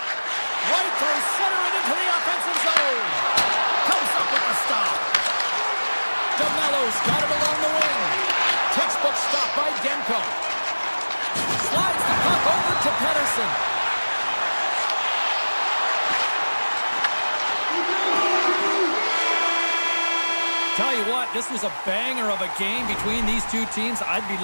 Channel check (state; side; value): inverted; both; correlation -1.00